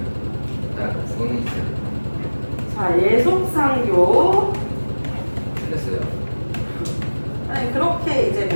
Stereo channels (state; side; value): inverted; both; correlation -1.00